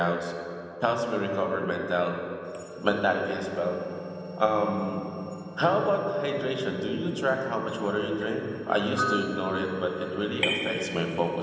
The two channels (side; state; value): both; identical; correlation 1.00